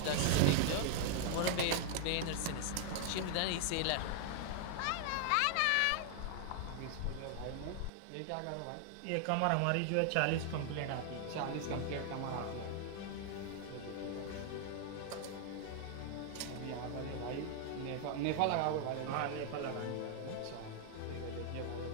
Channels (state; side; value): different; both; correlation 0.00